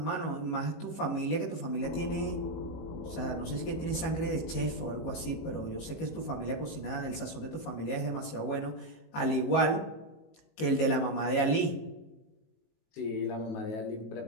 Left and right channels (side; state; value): right; late; 19 ms